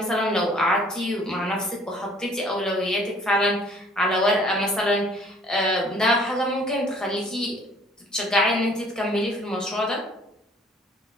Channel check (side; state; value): both; normal; correlation 0.56